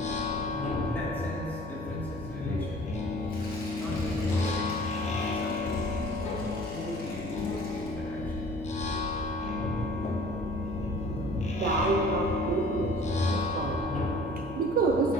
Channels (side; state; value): both; normal; correlation 0.49